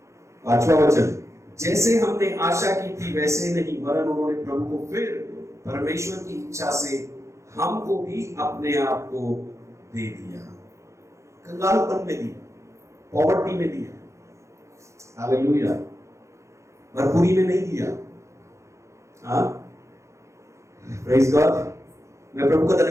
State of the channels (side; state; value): left; late; 0.14 ms